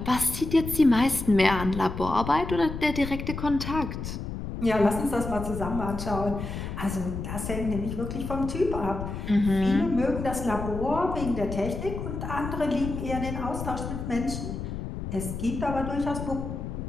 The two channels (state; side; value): noise; left; rumble, 6 dB below the sound